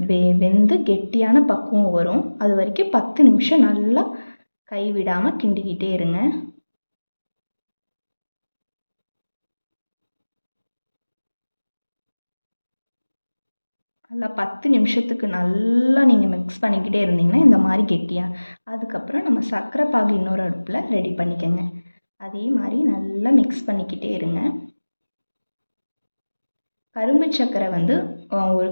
வெந்து கெட்டியான பக்குவம் வரும். அது வரைக்கும் 10 நிமிஷம் நல்லா கைவிடாமல் கிண்டிக்கிட்டே இருங்க. நல்லா 10 நிமிஷத்துக்கு நல்லா நீங்கள் மிக்ஸ் பண்ணிக்கிட்டே இருந்தீங்கன்னா இந்த மாதிரி கெட்டியாக, அதுக்கப்புறம் நம்ம சர்க்கரை பாகு இன்னொரு அடுப்பில் ரெடி பண்ணிக்கோங்க. அதே மாதிரி நல்லா மிக்ஸ் பண்ணிக்கிட்டே இருங்க. கரும்பு சர்க்கரை 1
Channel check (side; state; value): both; inverted; correlation -1.00